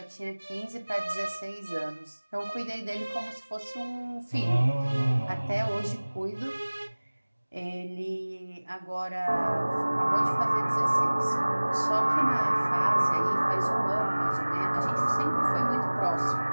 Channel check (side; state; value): both; inverted; correlation -1.00